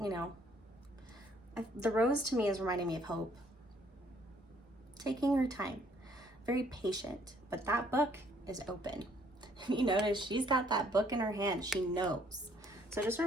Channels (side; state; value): both; normal; correlation 0.64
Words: You know, the rose to me is reminding me of hope. Taking her time, very patient, but that book is open. You notice she's got that book in her hand. She knows. So just